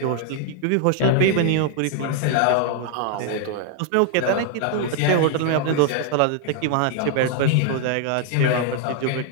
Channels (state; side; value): different; both; correlation 0.00